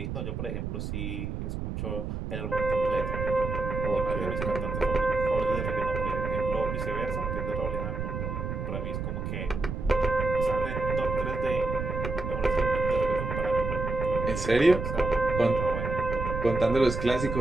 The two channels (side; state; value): right; noise; rumble, 4 dB below the sound